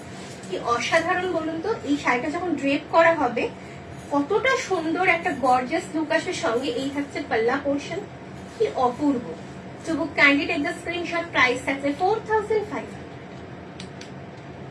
কি অসাধারণ বলুন তো। এই শাড়িটা যখন ড্রেপ করা হবে কতটা সুন্দর একটা গর্জিয়াস লুক আসবে। সঙ্গে এই থাকছে পাল্লা পোর্শন, কি অপূর্ব। To book kindly take the screenshot. Price থাকছে 4500।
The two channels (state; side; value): identical; both; correlation 1.00